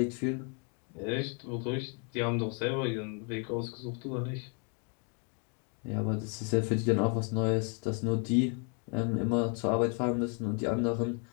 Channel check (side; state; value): right; quieter; 39.0 dB